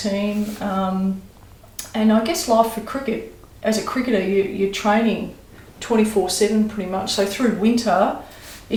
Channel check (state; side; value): identical; both; correlation 1.00